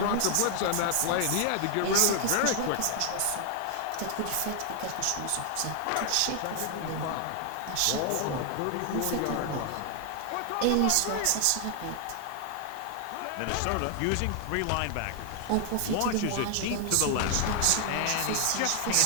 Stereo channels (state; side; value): different; both; correlation 0.00